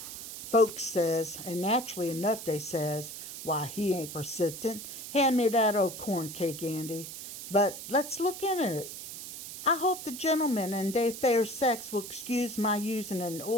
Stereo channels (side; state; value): right; noise; hiss, 10 dB below the sound